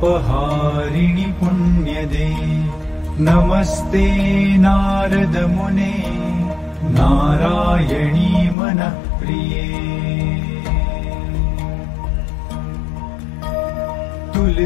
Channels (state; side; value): drops out; right; at 8.6 s